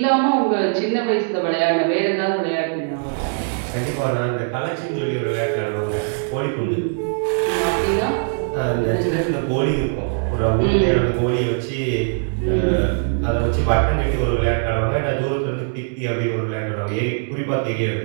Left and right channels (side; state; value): left; silent; 63 dB below the other